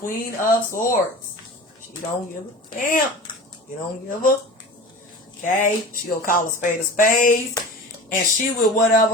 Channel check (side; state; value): both; normal; correlation 0.34